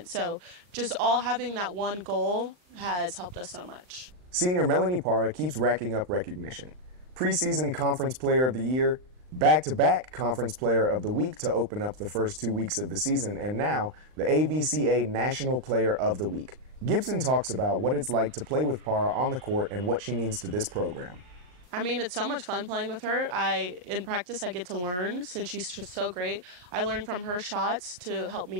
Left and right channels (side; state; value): left; late; 39 ms